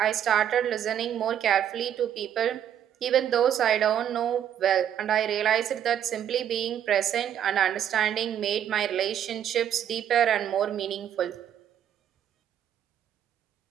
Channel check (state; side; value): quieter; left; 9.8 dB